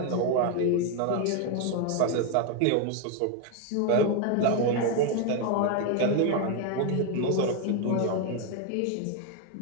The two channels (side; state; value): both; different; correlation 0.01